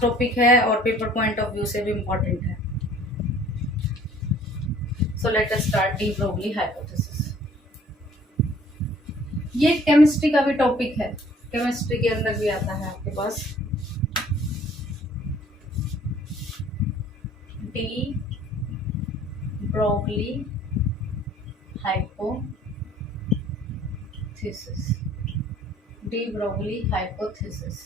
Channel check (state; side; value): normal; both; correlation 0.55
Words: टॉपिक है और पेपर पॉइंट ऑफ व्यू से भी इम्पोर्टेंट है। So let us start D Broglie hypothesis. ये केमिस्ट्री का भी टॉपिक है, केमिस्ट्री के अंदर भी आता है आपके पास। De Broglie hypothesis, de Broglie hypothesis.